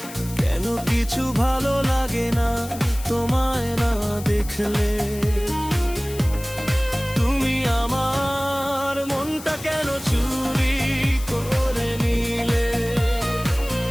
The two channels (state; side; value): noise; left; hiss, 15 dB below the sound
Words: কেন কিছু ভালো লাগে না তোমায় না দেখলে? তুমি আমার মনটা কেন চুরি করে নিলে?